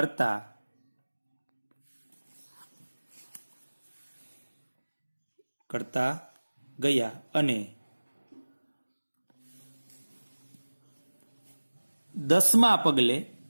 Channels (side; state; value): both; inverted; correlation -1.00